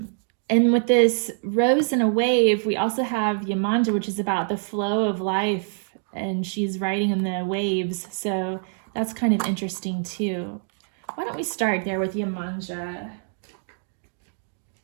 with this rose and a wave, we also have Yemanja, which is about the flow of life, and she's riding in the waves. So that's kind of interesting too. Why don't we start there with Yemanja?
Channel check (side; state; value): left; silent; digital silence